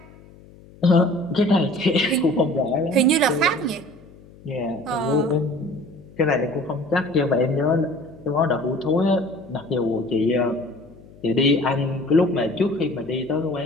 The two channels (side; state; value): left; noise; hum, 23 dB below the sound